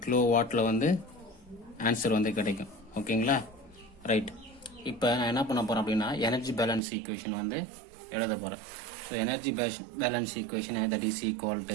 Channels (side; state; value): left; drops out; at 6.8 s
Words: kilo வாட்டில் வந்து ஆன்சர் வந்து கிடைக்கும். ஓகேங்களா. ரைட். இப்போ நான் என்ன பண்ண போகிறேன் அப்படின்னா எனர்ஜி பேலன்ஸ் ஈக்குவேஷன் வந்து எழுத போகிறேன். So energy balance equation that is equal